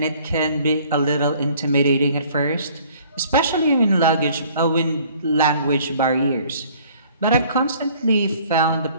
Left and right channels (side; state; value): both; inverted; correlation -0.56